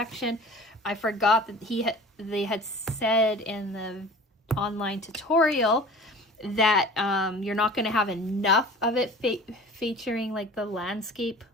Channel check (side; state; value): both; normal; correlation 0.42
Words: I forgot that they had said in the online tutorial that you're not going to have enough of it featuring like the landscape